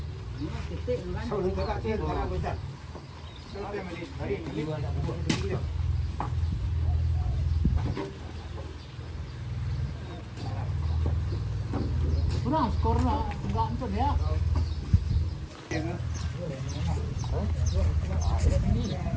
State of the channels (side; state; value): both; identical; correlation 1.00